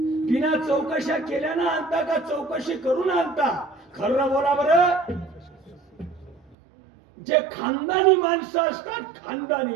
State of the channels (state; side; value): drops out; left; at 6.6 s